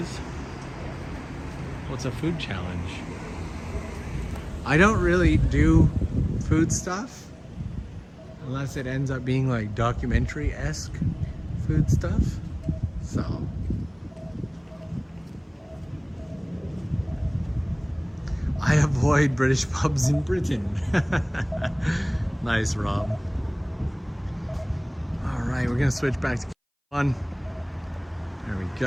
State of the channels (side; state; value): both; identical; correlation 1.00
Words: What's a food challenge? I don't really do food stuff unless it ends up being like documentary-esque food stuff. So I avoid British pubs in Britain. Nice, Rob. All right, we're gonna switch back to one. There we